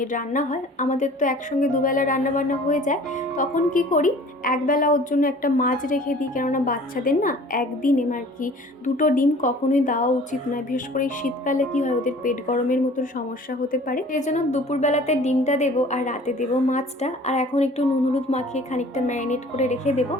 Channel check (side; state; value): both; normal; correlation 0.48